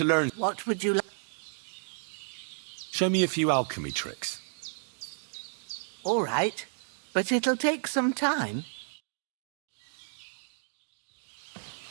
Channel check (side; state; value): left; silent; digital silence